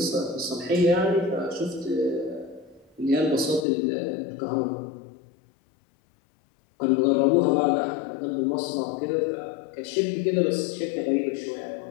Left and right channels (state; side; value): drops out; right; at 3.7 s